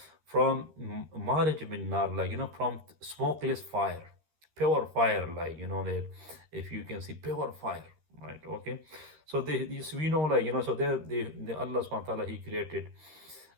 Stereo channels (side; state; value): left; late; 13 ms